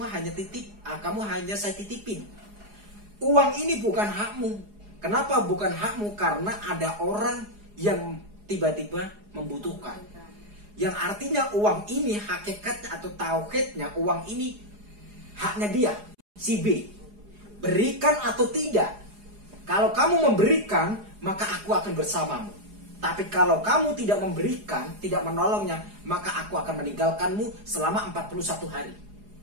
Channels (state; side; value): late; left; 4.8 ms